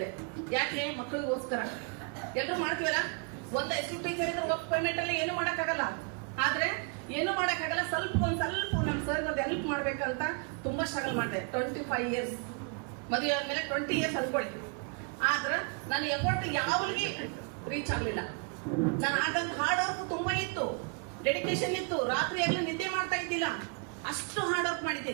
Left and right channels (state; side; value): quieter; left; 36.3 dB